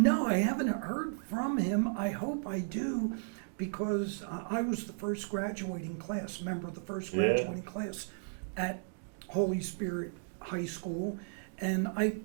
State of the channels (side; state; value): left; silent; digital silence